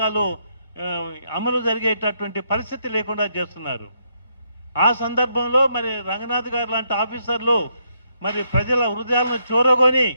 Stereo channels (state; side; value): inverted; both; correlation -0.76